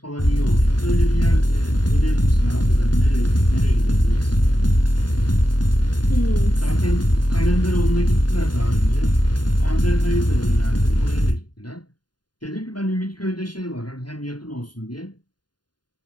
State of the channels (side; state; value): right; late; 0.70 ms